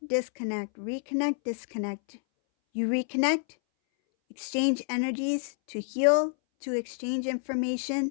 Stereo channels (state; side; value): silent; right; 59 dB below the other